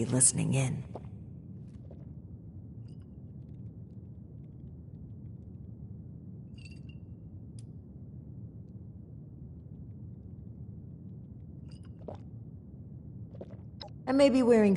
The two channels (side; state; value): both; identical; correlation 1.00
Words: listening in. I may be wearing